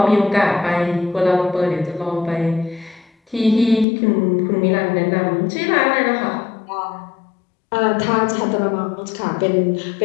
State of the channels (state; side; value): drops out; right; at 3.9 s